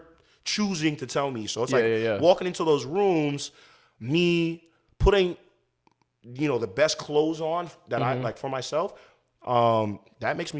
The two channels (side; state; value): both; identical; correlation 1.00